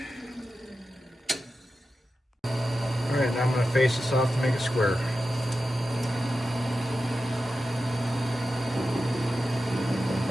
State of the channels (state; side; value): normal; both; correlation 0.92